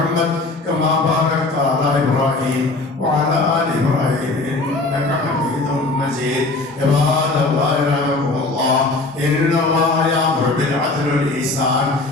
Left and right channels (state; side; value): quieter; right; 3.2 dB